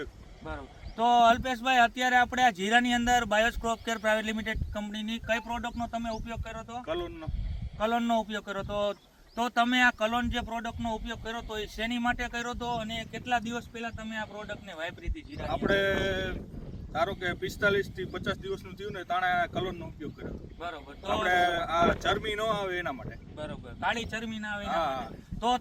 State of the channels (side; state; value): both; identical; correlation 1.00